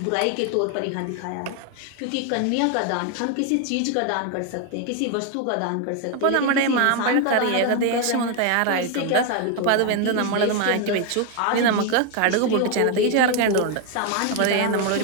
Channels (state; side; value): different; both; correlation 0.01